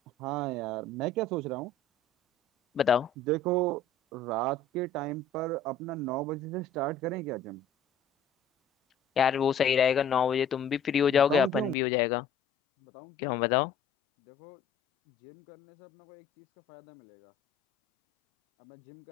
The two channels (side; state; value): right; drops out; at 11.8 s